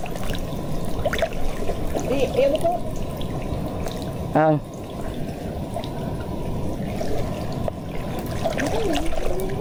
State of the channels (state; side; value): identical; both; correlation 1.00